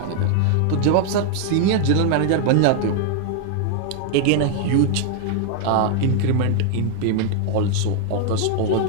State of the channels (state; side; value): different; both; correlation 0.00